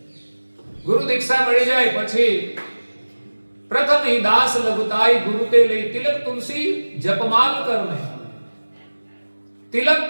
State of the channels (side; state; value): both; inverted; correlation -1.00